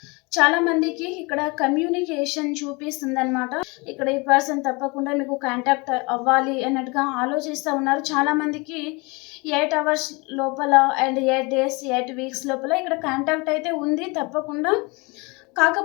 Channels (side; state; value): right; quieter; 27.4 dB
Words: చాలా మందికి ఇక్కడ కమ్యూనికేషన్ చూపిస్తుంది అనమాట. ఇక్కడ ఈ పర్సన్ తప్పకుండా మీకు కాంటాక్ట్ అవ్వాలి అన్నట్టుగా ఆలోచిస్తూ ఉన్నారు. చాలా మందికి 8 hours లోపల అండ్ 8 days 8 weeks లోపల ఇక్కడ కాంటాక్ట్ అయితే ఉంది తప్పకుండా.